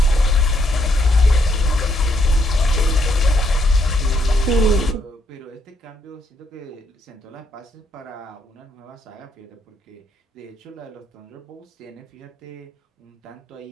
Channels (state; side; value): normal; both; correlation 0.74